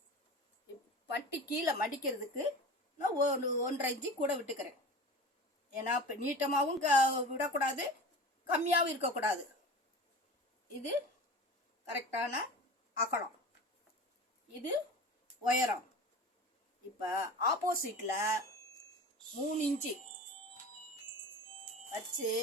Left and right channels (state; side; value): normal; both; correlation 0.34